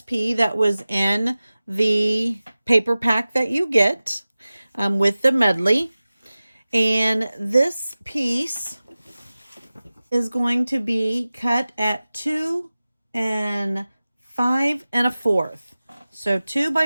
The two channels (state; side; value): inverted; both; correlation -0.97